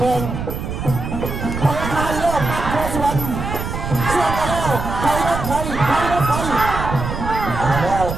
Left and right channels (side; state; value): right; noise; rumble, 5 dB below the sound